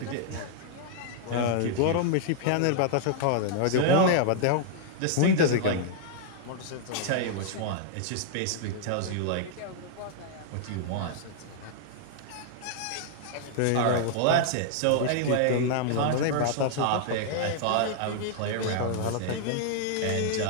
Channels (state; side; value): different; both; correlation -0.01